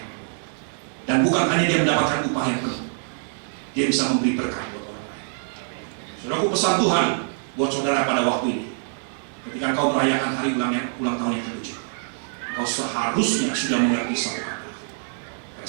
penuh. Dan bukan hanya dia mendapatkan upah yang penuh, dia bisa memberi berkat buat orang lain. Saudaraku, pesan Tuhan buat saudara pada waktu ini, ketika kau merayakan hari ulang tahun yang ke-7, kau seharusnya sudah mengerti satu kata:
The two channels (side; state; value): left; silent; digital silence